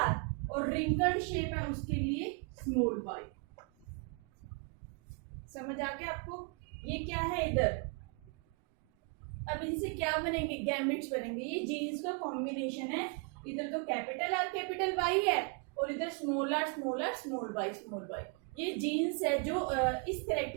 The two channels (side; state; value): left; quieter; 35.1 dB